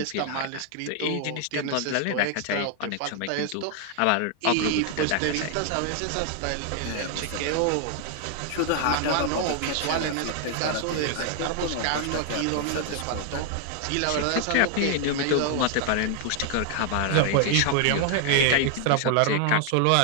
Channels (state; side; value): different; both; correlation 0.00